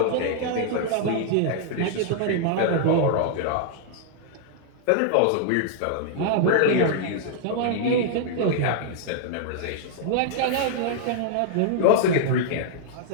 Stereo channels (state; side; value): different; both; correlation -0.01